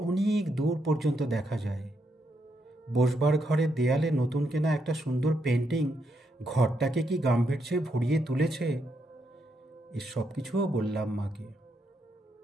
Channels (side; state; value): both; normal; correlation 0.79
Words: অনেক দূর পর্যন্ত দেখা যায়। বসবার ঘরের দেয়ালে নতুন কেনা একটা সুন্দর পেন্টিং ঘরটাকে কি গাম্ভীর্যে ভরিয়ে তুলেছে। এ সব কিছুও বললাম মাকে।